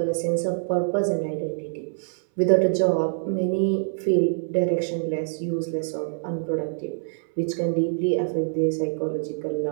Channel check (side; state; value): left; silent; 62 dB below the other